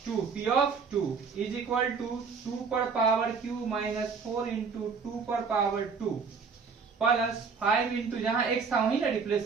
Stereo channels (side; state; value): left; quieter; 5.4 dB